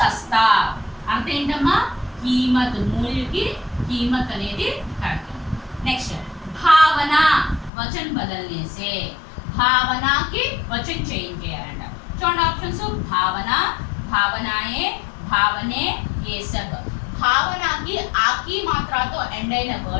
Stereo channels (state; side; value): drops out; right; at 7.7 s